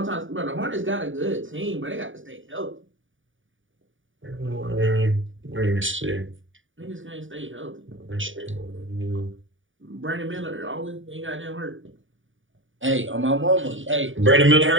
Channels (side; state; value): left; late; 0.57 ms